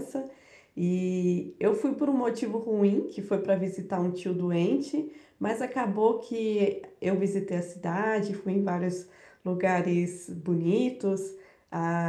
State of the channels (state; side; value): identical; both; correlation 1.00